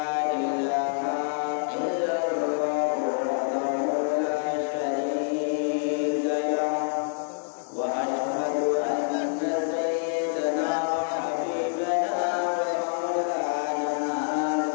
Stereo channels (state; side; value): silent; right; digital silence